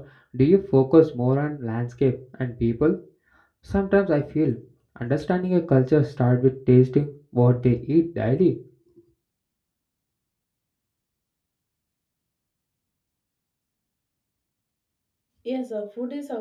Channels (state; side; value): identical; both; correlation 1.00